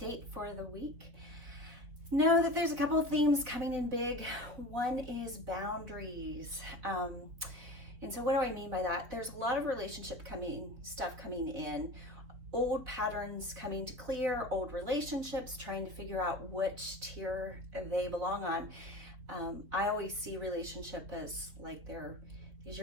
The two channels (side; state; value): left; late; 4.1 ms